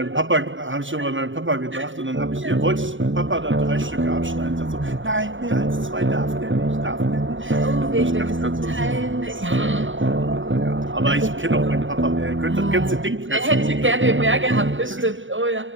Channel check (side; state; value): left; late; 0.56 ms